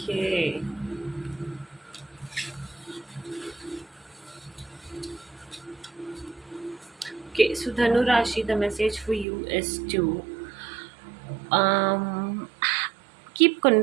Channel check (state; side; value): drops out; left; at 9.2 s